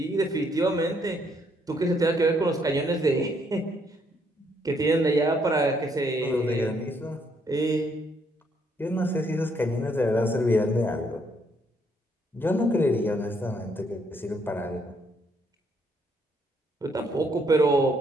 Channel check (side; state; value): both; normal; correlation 0.71